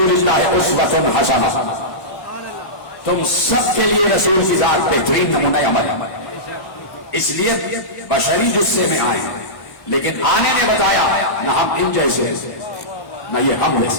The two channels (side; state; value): right; late; 1.0 ms